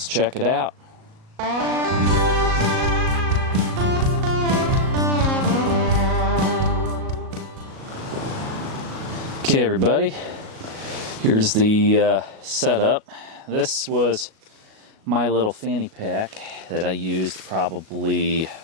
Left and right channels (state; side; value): late; left; 37 ms